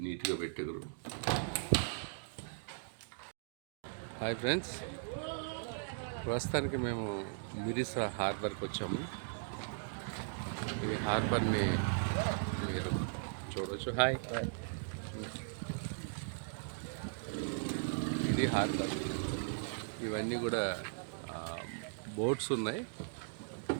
నీట్గా పెట్టారు. హాయ్ ఫ్రెండ్స్, ప్రస్తుతానికి మేము మిరిసా హార్బర్కి వచ్చాము. ఈ హార్బర్ని మీరు చూడవచ్చు. హాయ్, ఇది హార్బర్. ఇవన్నీ కూడా బోట్స్ ఉన్నాయి.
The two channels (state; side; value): silent; left; digital silence